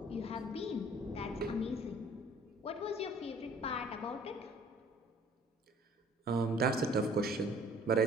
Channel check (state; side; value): normal; both; correlation 0.54